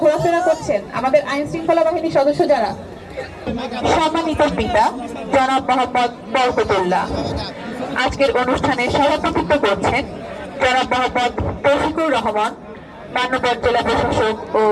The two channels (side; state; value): both; identical; correlation 1.00